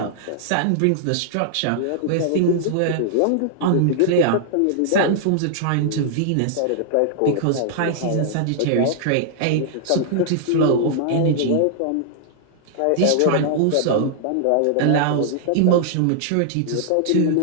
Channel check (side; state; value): both; different; correlation -0.01